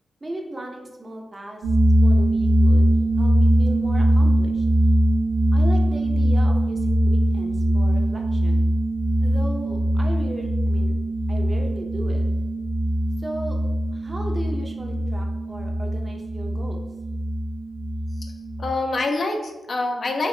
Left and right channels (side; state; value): both; normal; correlation 0.94